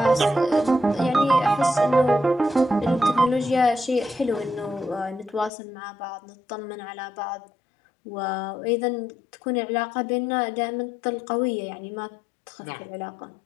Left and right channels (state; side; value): drops out; right; at 5.5 s